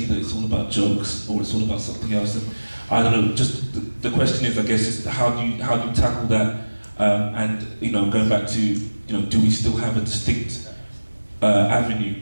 it's all about jokes or it's all about something else. And I don't know. Just the question is, I guess, is how do you tackle that? And going back to do we still have a distinct avenue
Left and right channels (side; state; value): both; inverted; correlation -1.00